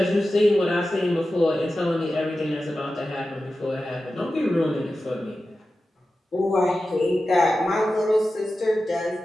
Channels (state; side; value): normal; both; correlation 0.93